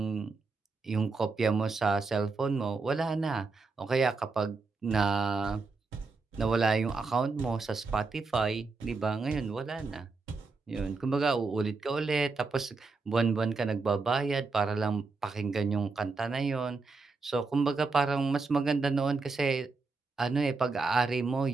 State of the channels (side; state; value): left; quieter; 4.1 dB